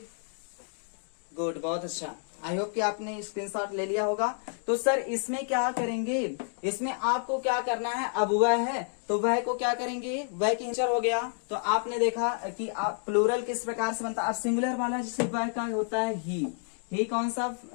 गुड, बहुत अच्छा। आई होप कि आपने स्क्रीनशॉट ले लिया होगा। तो सर इसमें क्या करेंगे, इसमें आपको क्या करना है, अब वह है तो वह को क्या करेंगे, वह की इंचर हो गया। तो आपने देखा कि आप प्लूरल किस प्रकार से बनता है। अब सिंगुलर वाला जैसे वह का होता है ही कौन सा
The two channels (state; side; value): silent; right; 58 dB below the other